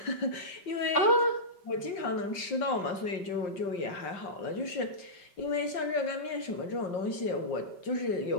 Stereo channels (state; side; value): late; right; 5.2 ms